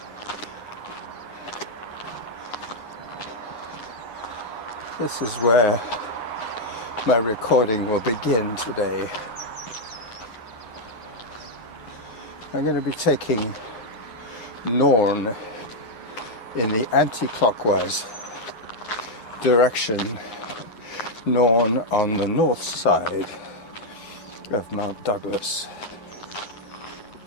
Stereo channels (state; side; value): late; right; 9.5 ms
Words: This is where my recording will begin today. I'm going to be taking Norn in the anti-clockwise direction, Norn on the north side of Mount Douglas.